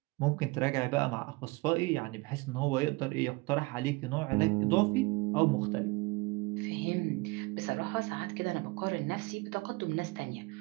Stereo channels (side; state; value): left; quieter; 24.7 dB